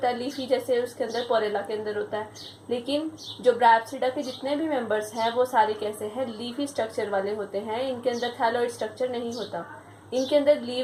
है। लीफी जैसे उसके अंदर पोरेला के अंदर होता है। लेकिन जो ब्रायोप्सिडा के जितने भी मेंबर्स हैं वो सारे कैसे हैं, लीफी स्ट्रक्चर वाले होते हैं। इनके अंदर थैलॉइड स्ट्रक्चर नहीं होता। इनके अंदर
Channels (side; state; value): both; identical; correlation 1.00